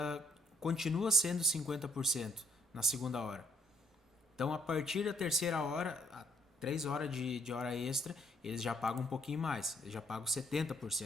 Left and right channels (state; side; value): normal; both; correlation 0.67